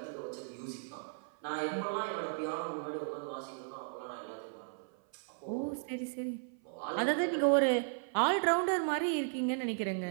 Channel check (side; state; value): left; silent; 54 dB below the other